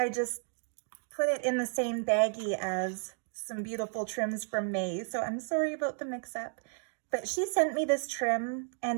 just put it in the same baggie as some beautiful trims from May, so I'm sorry about the mix-up. But she sent me this trim,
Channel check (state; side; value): silent; left; 56 dB below the other